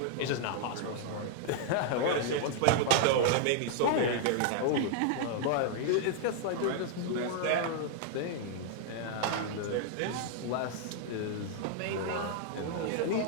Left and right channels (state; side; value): different; both; correlation -0.01